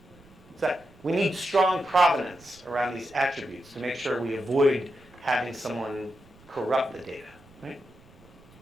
So we need strong provenance around these attributes to make sure we avoid having someone corrupt the data. Right?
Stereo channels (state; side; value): noise; right; rumble, 26 dB below the sound